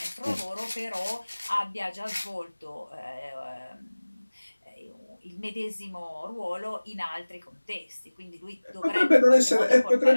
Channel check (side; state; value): both; inverted; correlation -1.00